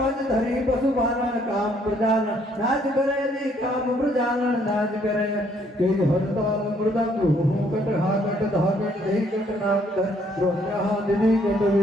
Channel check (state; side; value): normal; both; correlation 0.66